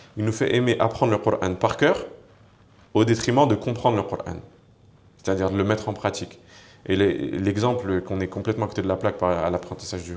il nous fait aimer apprendre le Coran par cœur au détriment de comprendre le Coran. C'est-à-dire de le mettre en pratique. Et l'exemple qu'on est complètement à côté de la plaque à l'apprentissage du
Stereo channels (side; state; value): both; identical; correlation 1.00